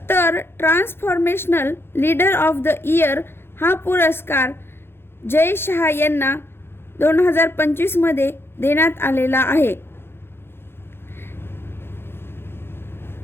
तर transformational leader of the year हा पुरस्कार जय शहा यांना 2025मध्ये देण्यात आलेला आहे.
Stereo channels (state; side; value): late; right; 0.11 ms